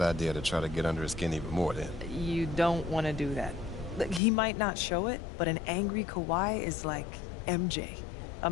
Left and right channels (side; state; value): right; drops out; at 4.2 s